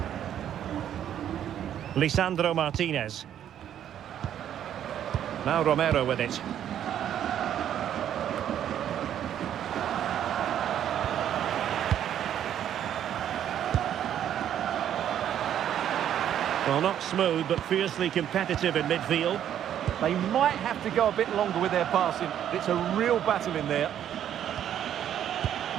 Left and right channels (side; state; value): left; quieter; 10.3 dB